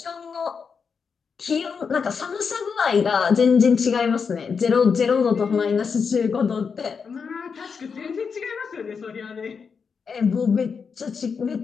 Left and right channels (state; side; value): quieter; right; 5.8 dB